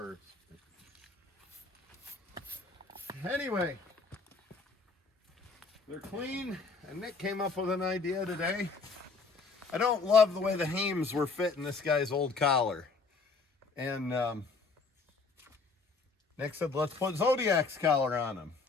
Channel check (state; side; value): quieter; right; 4.3 dB